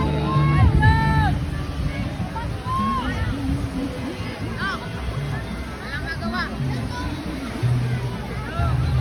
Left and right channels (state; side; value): identical; both; correlation 1.00